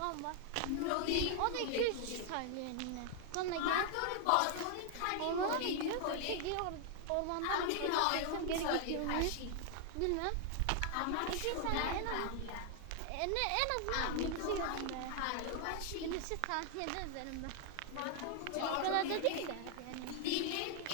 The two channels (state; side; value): different; both; correlation 0.00